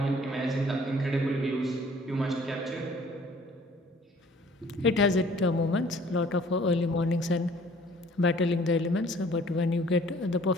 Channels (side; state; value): both; normal; correlation 0.55